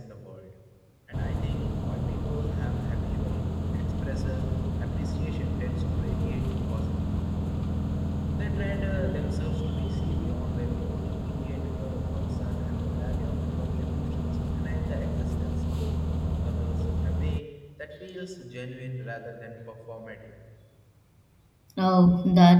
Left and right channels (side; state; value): both; identical; correlation 1.00